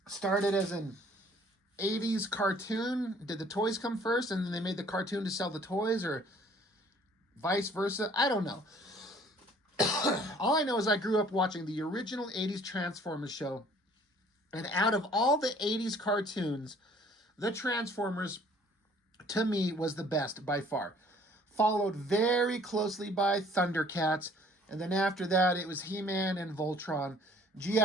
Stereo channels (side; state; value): both; normal; correlation 0.56